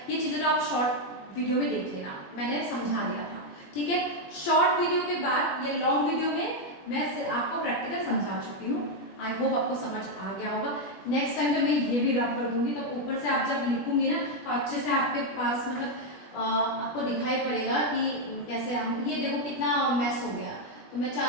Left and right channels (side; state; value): right; late; 21 ms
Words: ये चीज़ें तो आप शॉर्ट वीडियो में देख लेना, मैंने समझा दिया था, ठीक है। शॉर्ट वीडियो के बाद ये लॉन्ग वीडियो में मैं आपको प्रैक्टिकल समझा चुकी हूँ। आई होप आपको समझ आ गया होगा। नेक्स्ट टाइम तो मैं ये भी रब कर दूंगी, तो ऊपर से आप जब लिखूंगी ना तो अच्छे से आपके पास मतलब आपको दिखाई पड़ेगा कि कैसे हम, ये देखो कितना मैस हो गया। तो मैं